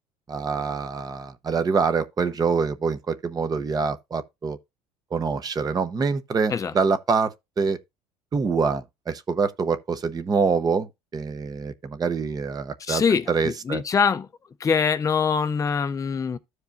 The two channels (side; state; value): both; normal; correlation 0.63